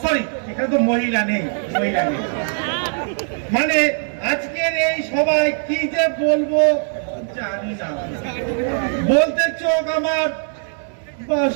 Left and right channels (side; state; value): left; silent; 64 dB below the other